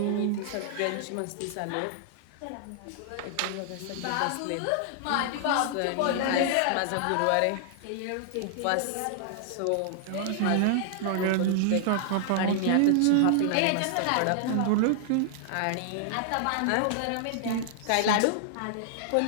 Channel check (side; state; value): both; different; correlation -0.01